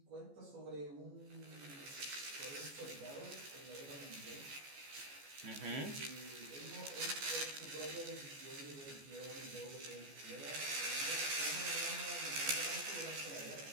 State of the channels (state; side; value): late; left; 14 ms